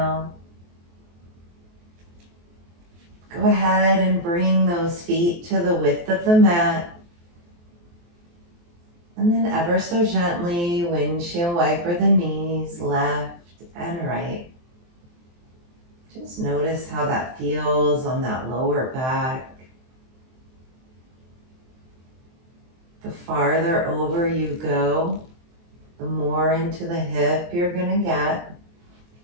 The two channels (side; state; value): left; late; 23 ms